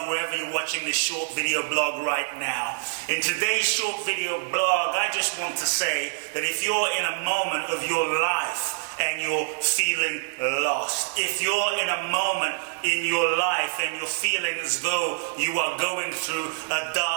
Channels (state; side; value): silent; left; 61 dB below the other